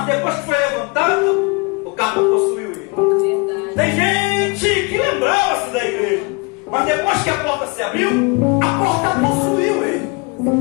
depois que foi levantado, o cargo possuiu ele. Tem gente que lembrava-se da igreja, mas depois que a porta se abriu, a porta possuiu ele.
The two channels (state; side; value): quieter; right; 29.4 dB